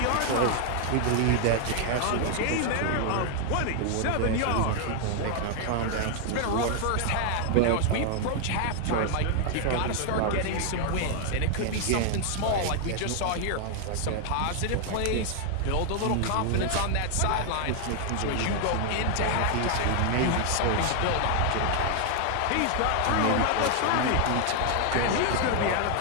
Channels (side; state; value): both; different; correlation 0.00